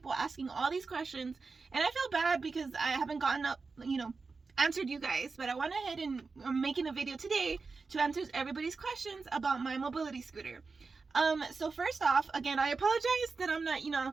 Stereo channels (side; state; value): left; quieter; 4.4 dB